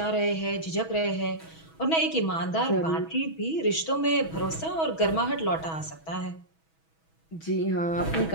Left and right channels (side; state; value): right; late; 6.2 ms